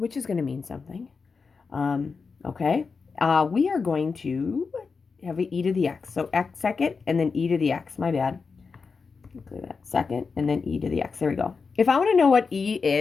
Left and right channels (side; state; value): right; quieter; 4.9 dB